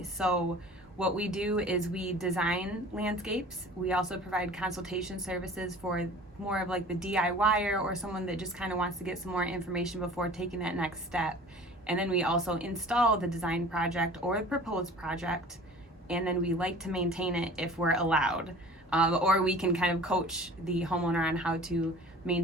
So what we do is we design landscapes. We also provide consultation services for more of like the DIYer or someone that just kind of wants to get some more information before taking that next step. And then we also install the design project or the proposed project, and then we like to maintain it if we're allowed. Or we can kind of coach the homeowner on how to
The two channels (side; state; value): both; normal; correlation 0.44